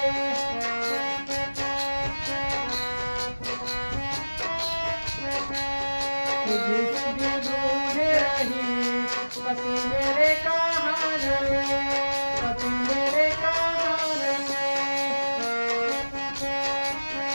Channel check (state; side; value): inverted; both; correlation -1.00